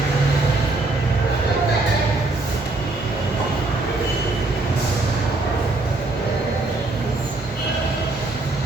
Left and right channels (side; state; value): left; quieter; 3.1 dB